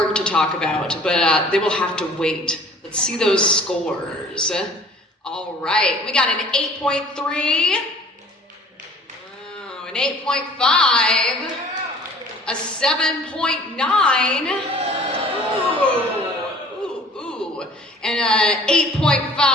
to talk about, but they will have to wait. Let's see those scores. All right, we got an 8.3. An 8.5, a 7.9, ooh, and a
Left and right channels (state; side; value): normal; both; correlation 0.50